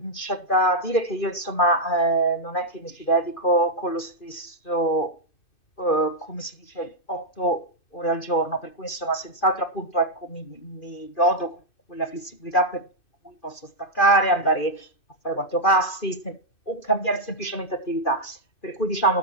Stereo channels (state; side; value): late; right; 2.4 ms